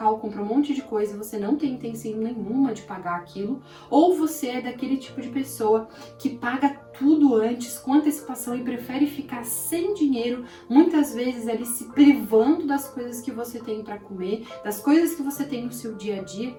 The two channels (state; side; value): identical; both; correlation 1.00